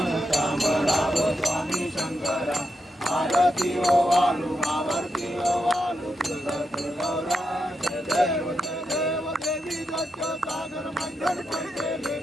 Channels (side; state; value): both; normal; correlation 0.85